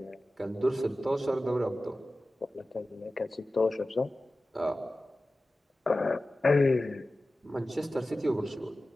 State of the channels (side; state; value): both; normal; correlation 0.95